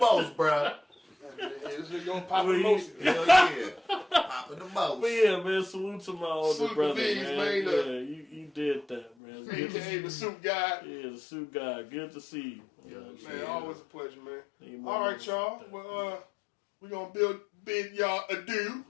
bro. this nigga gonna pop the most. Hell yeah. Popping the most. But yeah, man, salute to my older Salute brother, to these, man. man. Yeah, you did that, man. Good to see AKA the you. suit guy. Yeah, the suit guy. Good to see you. Yeah, Man, always a pleasure, man. Man, All right, y'all. Well, We're going to bid y'all adieu.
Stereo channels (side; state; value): right; drops out; at 9.1 s